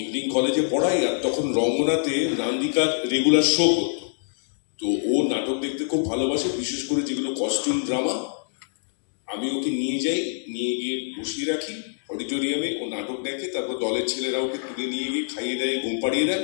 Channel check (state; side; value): silent; right; digital silence